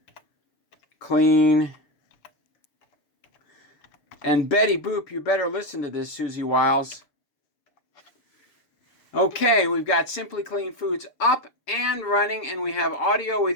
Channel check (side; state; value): right; late; 6.9 ms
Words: Clean. And Betty Boop, you better listen to this, Susie Wiles. Okay, we've got Simply Clean Foods up and running, and we have audio